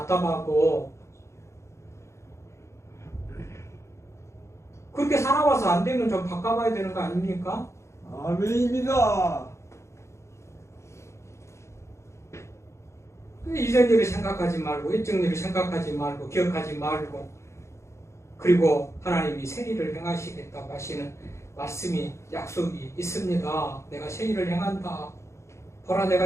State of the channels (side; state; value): right; late; 0.14 ms